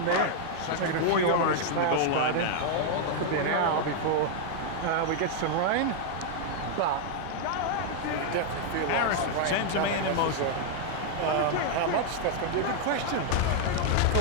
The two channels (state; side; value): different; both; correlation 0.00